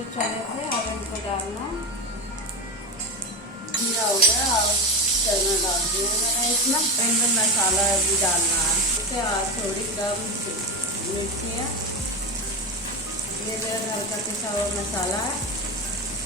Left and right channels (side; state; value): both; normal; correlation 0.18